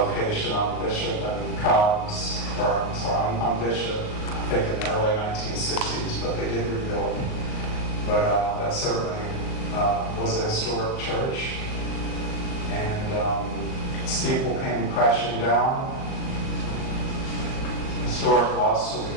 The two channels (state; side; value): late; right; 39 ms